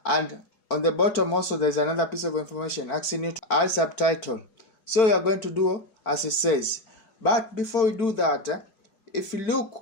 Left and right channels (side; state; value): right; late; 4.5 ms